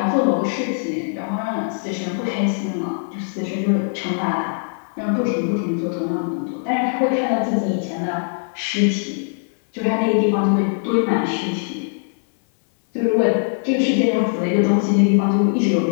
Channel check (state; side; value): silent; right; digital silence